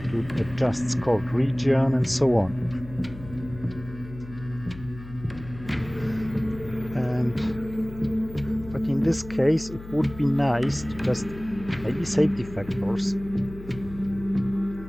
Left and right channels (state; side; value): noise; left; hum, 15 dB below the sound